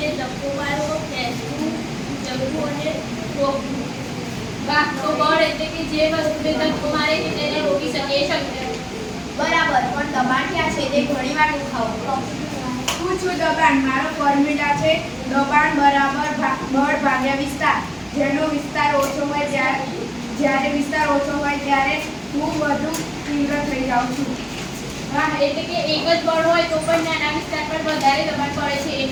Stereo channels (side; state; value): both; identical; correlation 1.00